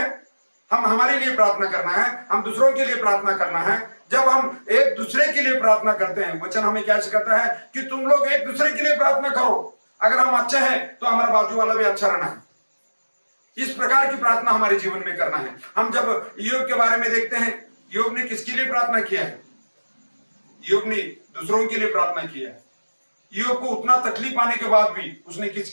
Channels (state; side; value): inverted; both; correlation -1.00